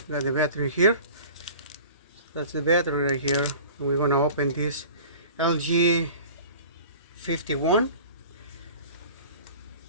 We got the battery here. That's the battery right here. We're going to open this LG 51.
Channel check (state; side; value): inverted; both; correlation -0.42